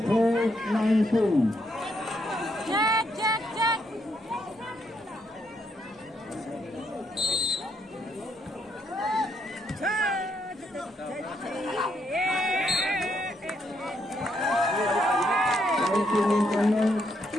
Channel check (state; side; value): normal; both; correlation 0.76